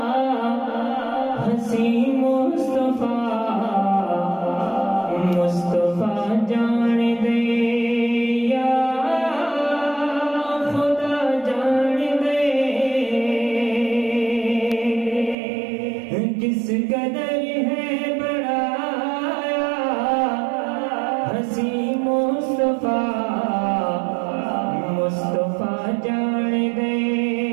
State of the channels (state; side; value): drops out; left; at 15.4 s